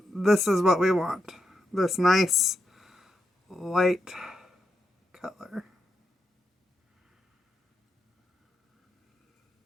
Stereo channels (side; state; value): both; normal; correlation 0.83